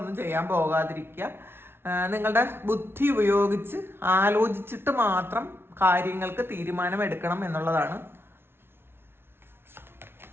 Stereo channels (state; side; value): late; left; 0.11 ms